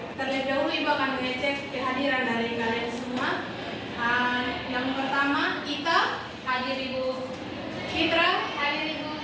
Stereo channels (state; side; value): identical; both; correlation 1.00